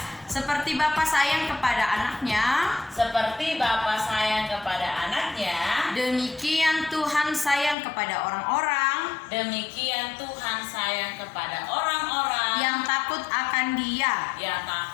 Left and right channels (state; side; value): drops out; right; at 7.8 s